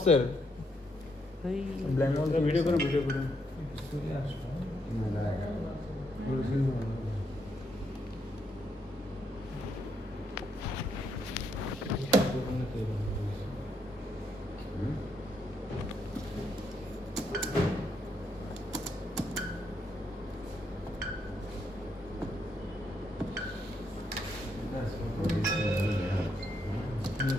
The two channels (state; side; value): normal; both; correlation 0.77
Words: ভিডিও করে ভিডিও করে